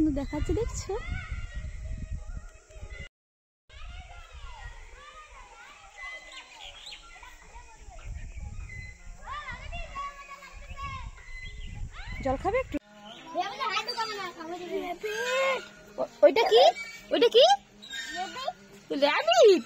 দেখাচ্ছে, দেখছো? জল খাবে একটু? ওইটা কি, ওইটা কি? র্যাবিট।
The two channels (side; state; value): both; identical; correlation 1.00